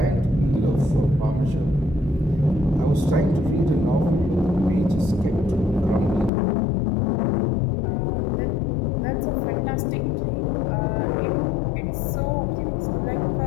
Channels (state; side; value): drops out; right; at 6.3 s